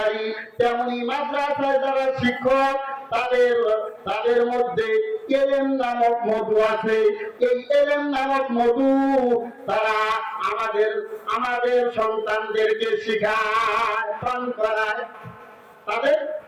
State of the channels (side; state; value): both; identical; correlation 1.00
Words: তেমনি মাদ্রাসায় যারা শিক্ষক, তাদের মধ্যে এলেম নামক মধু আছে। এই এলেম নামক মধু তারা আমাদের সন্তানদেরকে শিখায়, পান করায়। তাদের